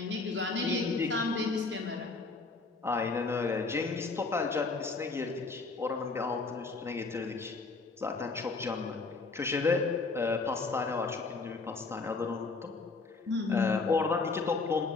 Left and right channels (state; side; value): quieter; right; 4.0 dB